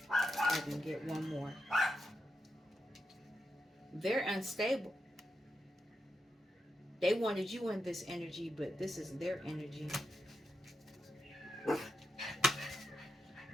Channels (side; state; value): both; normal; correlation 0.85